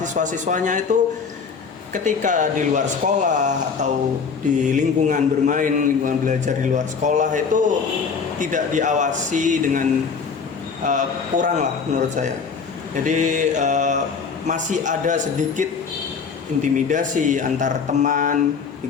itu ketika di luar sekolah atau di lingkungan bermain, lingkungan belajar di luar sekolah itu tidak diawasi dengan kurang lah menurut saya. Jadi masih ada sedikit intimidasi antar teman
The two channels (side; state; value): right; quieter; 5.7 dB